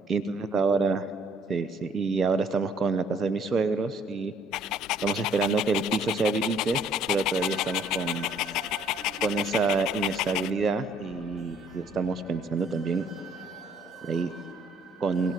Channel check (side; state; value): both; normal; correlation 0.61